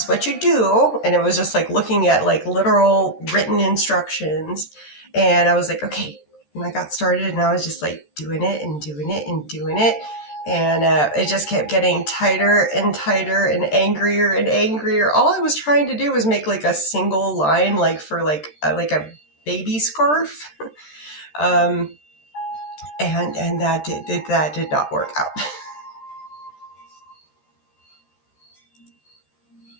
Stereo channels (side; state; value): right; late; 13 ms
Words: is what you do. And it was just like looking at like literal written instructions. And I was like, okay. And I got started and I was just like doing it and doing it and doing it. And it just kept getting tighter and tighter and angrier. All I was trying to do was make like a single line, like for like a baby scarf. And that did not work out.